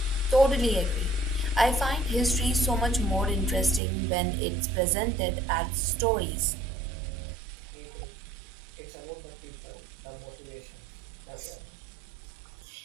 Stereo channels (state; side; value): drops out; left; at 3.8 s